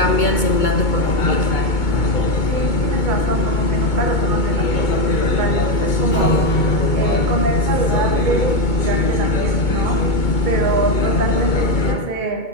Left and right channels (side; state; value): right; late; 2.2 ms